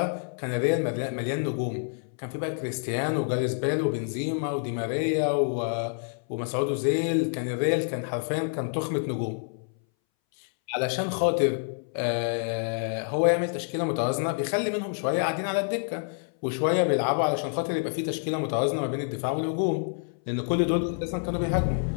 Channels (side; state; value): right; silent; 60 dB below the other